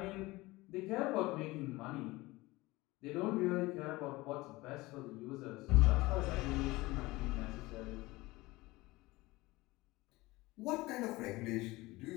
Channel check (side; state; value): right; quieter; 20.6 dB